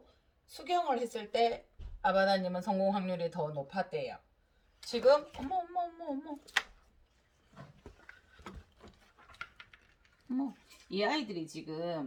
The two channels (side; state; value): both; identical; correlation 1.00